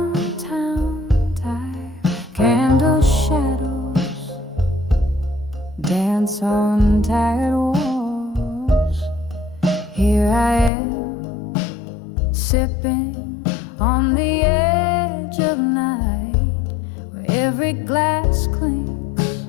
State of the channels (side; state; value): right; drops out; at 10.7 s